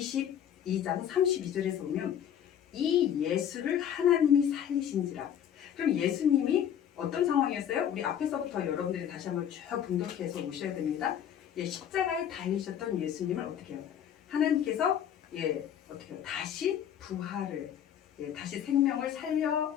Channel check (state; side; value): quieter; right; 9.5 dB